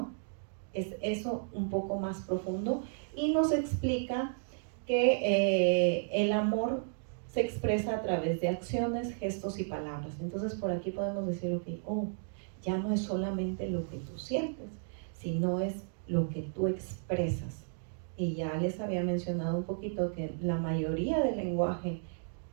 Es eso un poco más profundo, y nos explica que el amor se expresa a través de acciones, gestos y palabras. Entonces por aquí podemos decir, ya no es solamente lo que tú sientes, sino es lo que tú expresas. Y ya les había mencionado un poquito que la mayoría del lenguaje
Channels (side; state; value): left; silent; digital silence